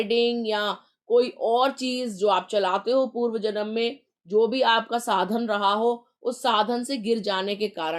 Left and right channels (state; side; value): identical; both; correlation 1.00